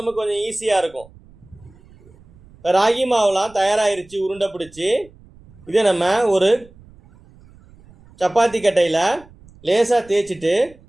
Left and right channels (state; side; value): noise; right; rumble, 25 dB below the sound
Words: நமக்கு கொஞ்சம் ஈஸியாக இருக்கும். ராகி மாவுலாம் தயாராகிருச்சு உருண்டை பிடிச்சி. இதை நம்ம ஒரு சப்பாத்தி கட்டையில் லேசாக தேய்ச்சிட்டு